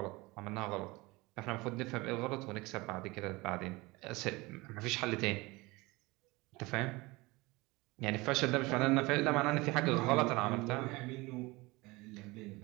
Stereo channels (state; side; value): quieter; left; 22.8 dB